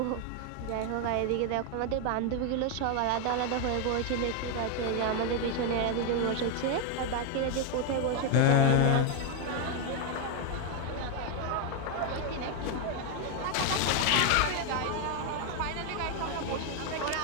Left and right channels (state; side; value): different; both; correlation 0.01